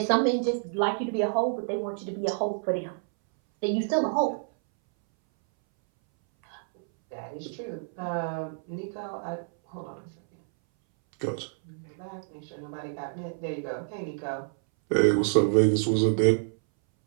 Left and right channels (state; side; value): silent; left; 59 dB below the other